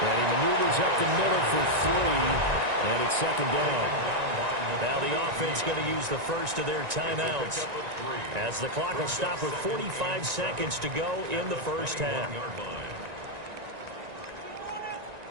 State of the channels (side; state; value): left; late; 1.9 ms